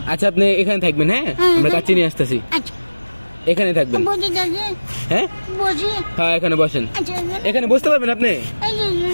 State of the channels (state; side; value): inverted; both; correlation -1.00